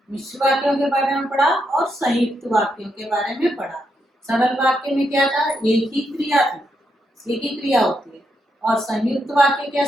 मिश्र वाक्यों के बारे में पढ़ा और संयुक्त वाक्यों के बारे में पढ़ा। सरल वाक्य में क्या था? एक ही क्रिया थी, एक ही क्रिया होती है। और संयुक्त वाक्य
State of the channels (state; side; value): normal; both; correlation 0.81